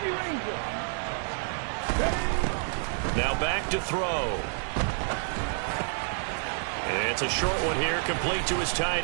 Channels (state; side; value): silent; left; 59 dB below the other